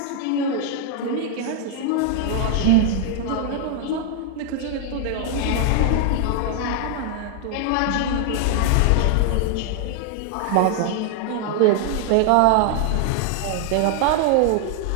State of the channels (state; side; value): different; both; correlation 0.00